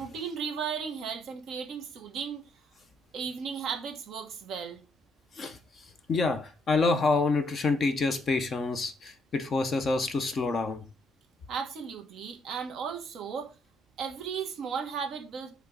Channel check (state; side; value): normal; both; correlation 0.71